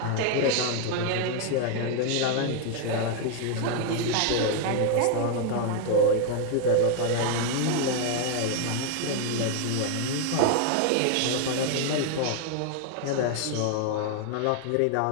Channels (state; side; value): different; both; correlation 0.00